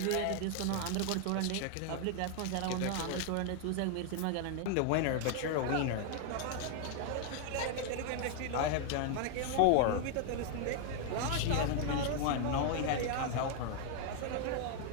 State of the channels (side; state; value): both; different; correlation 0.00